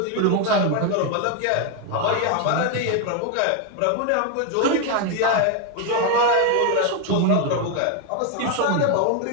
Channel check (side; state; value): both; different; correlation 0.01